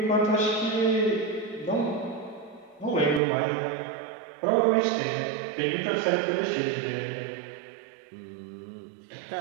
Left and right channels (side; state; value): left; drops out; at 3.2 s